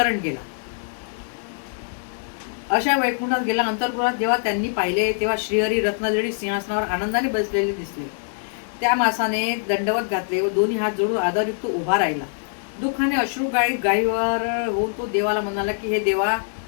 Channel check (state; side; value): silent; right; digital silence